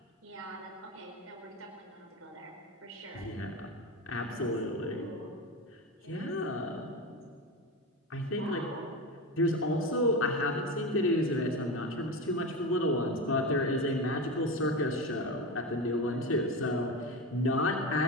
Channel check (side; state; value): both; normal; correlation 0.21